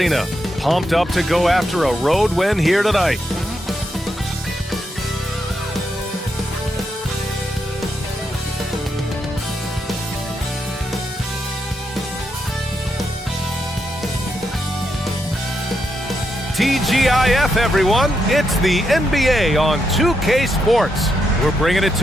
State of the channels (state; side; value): normal; both; correlation 0.82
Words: pumped up to go after a road win here tonight. TGIF, everyone. It's the NBA on 2K Sports. We're bringing it